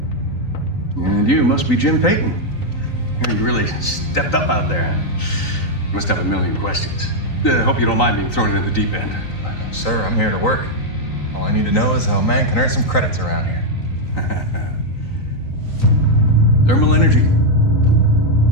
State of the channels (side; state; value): right; late; 3.9 ms